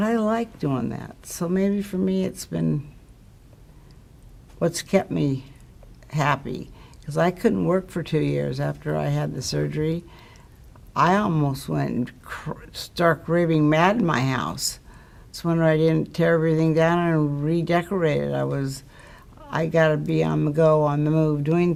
like doing that. So maybe for me it's been what's kept me happy. Because I couldn't work for 2 years after I had the surgery. I almost went stark raving mad in my house. It's when I didn't tear everything down and redecorate it. I got to be on the go, on the move, doing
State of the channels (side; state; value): both; identical; correlation 1.00